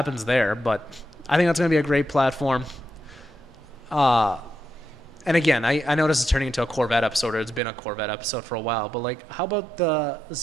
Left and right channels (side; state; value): left; drops out; at 7.6 s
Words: there. But I think that's going to be a great platform. And again, I know this is turning into a Corvette episode, or it's been a Corvette episode for a while, but like, how about the